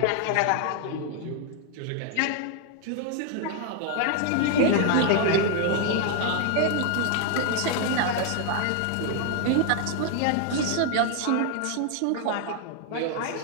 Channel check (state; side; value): different; both; correlation 0.00